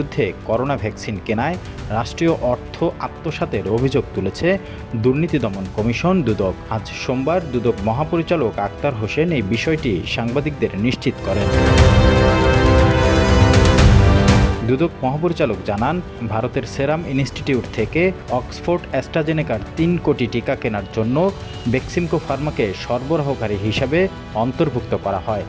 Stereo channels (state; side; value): identical; both; correlation 1.00